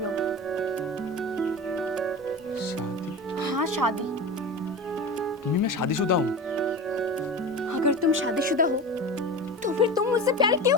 शादी? हाँ शादी। मम्मी मैं शादीशुदा हूँ। अगर तुम शादीशुदा हो तो फिर तुम मुझसे प्यार क्यों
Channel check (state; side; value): normal; both; correlation 0.29